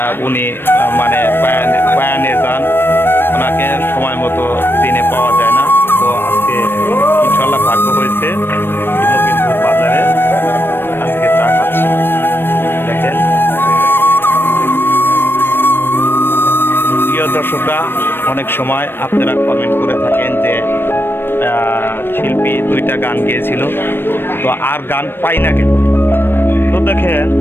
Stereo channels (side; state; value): right; late; 0.10 ms